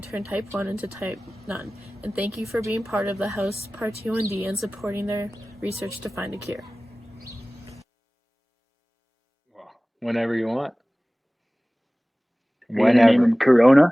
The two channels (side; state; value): both; normal; correlation 0.98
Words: type 1 into type none, and thank you for being part of the House ParT1D and supporting their research to find a cure. Whenever you want. Are you gonna name him